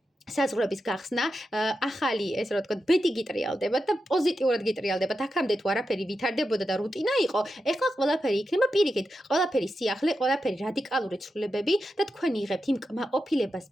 საზღვრების გახსნა, ახალი ესე რომ ვთქვათ, ბედი გიტრიალდებათ და პოზიტიურად გიტრიალდებათ. აქამდე თუ არაფერი ვითარდებოდა და რუტინა იყო, ეხლა ყველაფერი იქნება პირიქით, ყველაფერი სიახლე, ყველაფერი რადიკალური ცვლილებები და თქვენ იღებთ იმ კმაყოფილებას,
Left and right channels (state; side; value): normal; both; correlation 0.89